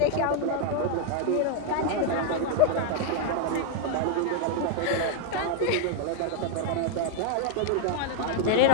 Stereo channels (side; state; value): both; different; correlation 0.00